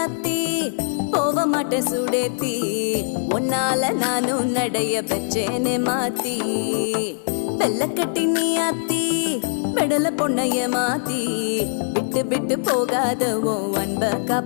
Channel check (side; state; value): right; silent; digital silence